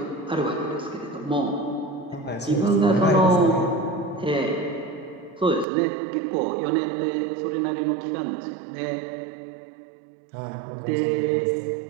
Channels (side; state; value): left; drops out; at 5.7 s